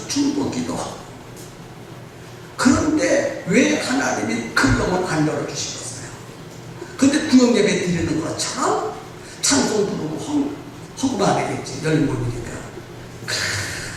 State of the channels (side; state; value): both; identical; correlation 1.00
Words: 중보 기도하고. 그런데 왜 하나님이 그 영을 안 열어주시겠어요? 근데 구역 예배 드리는 것처럼 찬송 부르고 헌금안 하겠지. 열린 모임이니까.